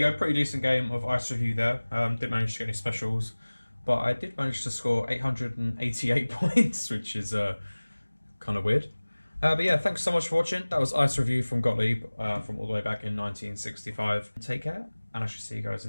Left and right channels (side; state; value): both; inverted; correlation -1.00